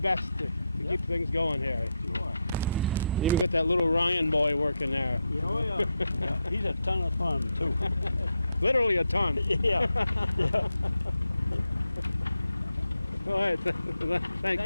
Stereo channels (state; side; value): inverted; both; correlation -0.84